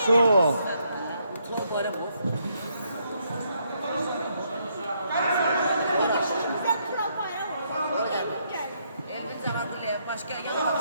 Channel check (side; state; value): both; inverted; correlation -0.74